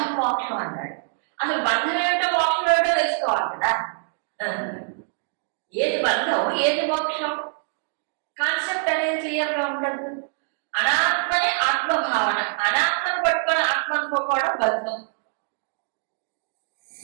మోక్షం అన్నాడు. అసలు బంధం ఏమిటో మోక్షం ఏమిటో తెలుసుకోవాలి కదా. ఏది బంధం, ఏది మోక్షం, కాన్సెప్ట్ అనేది క్లియర్గా ఉండదు. అనాత్మనే ఆత్మభావన, అనాత్మను పట్టుకొని ఆత్మ అనుకోవడం బంధం.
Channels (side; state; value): left; silent; digital silence